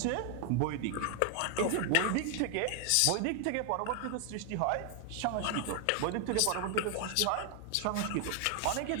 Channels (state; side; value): different; both; correlation 0.00